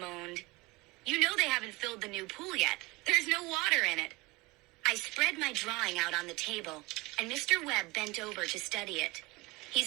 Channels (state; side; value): quieter; left; 23.1 dB